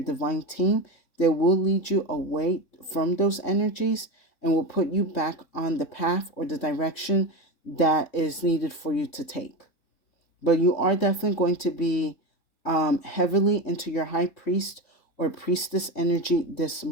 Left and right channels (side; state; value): right; late; 3.6 ms